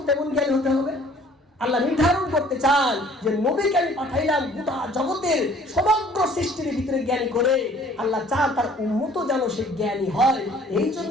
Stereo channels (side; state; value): both; normal; correlation 0.55